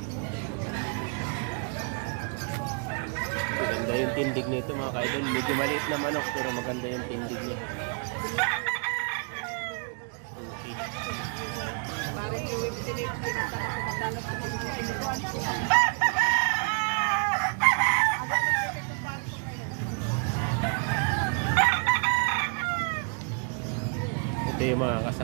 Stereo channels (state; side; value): quieter; left; 37.3 dB